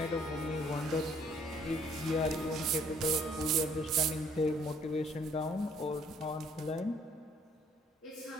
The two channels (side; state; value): both; normal; correlation 0.63